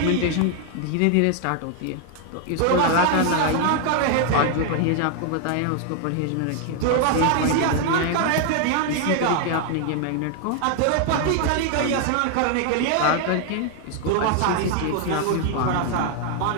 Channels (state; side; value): different; both; correlation 0.00